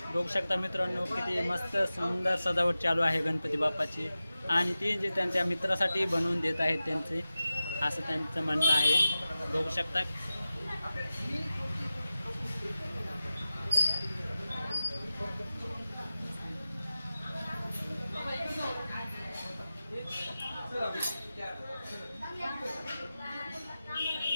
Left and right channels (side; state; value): both; inverted; correlation -0.95